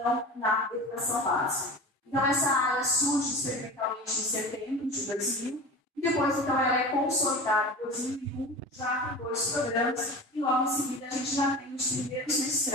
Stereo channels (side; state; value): both; normal; correlation 0.33